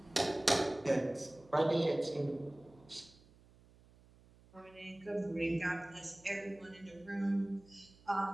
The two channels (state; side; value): noise; right; hum, 26 dB below the sound